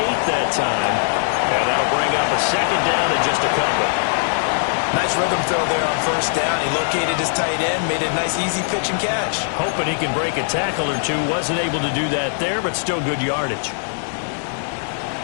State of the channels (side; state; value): right; silent; digital silence